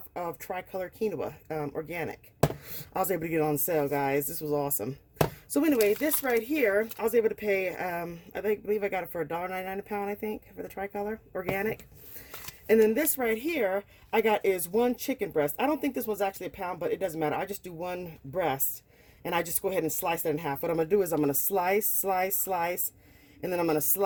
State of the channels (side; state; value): both; identical; correlation 1.00